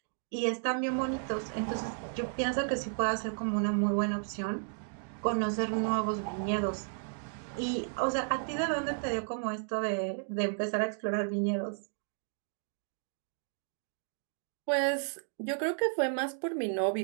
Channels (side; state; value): left; silent; digital silence